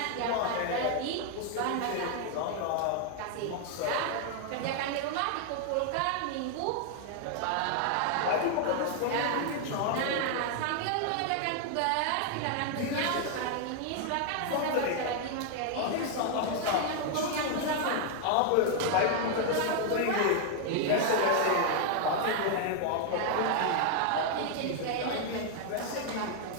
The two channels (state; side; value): different; both; correlation 0.00